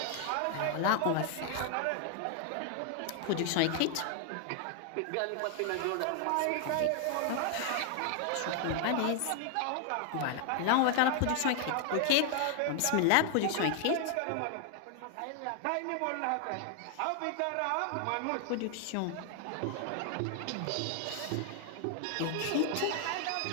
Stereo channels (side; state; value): both; different; correlation 0.00